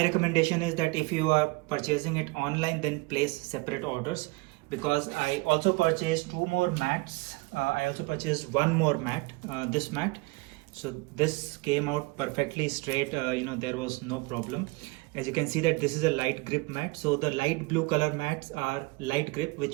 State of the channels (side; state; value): left; quieter; 25.3 dB